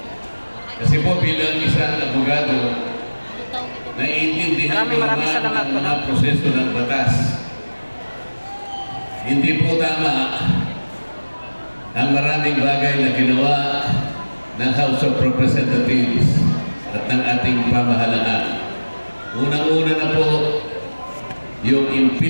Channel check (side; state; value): both; inverted; correlation -1.00